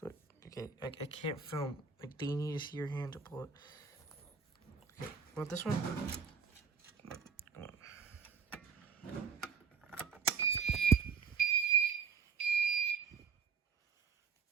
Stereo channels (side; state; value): left; quieter; 6.0 dB